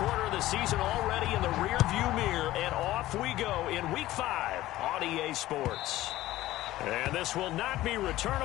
of the season already in the rearview mirror, and off we go in Week 5 on EA Sports. And this will not be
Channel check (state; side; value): quieter; right; 15.9 dB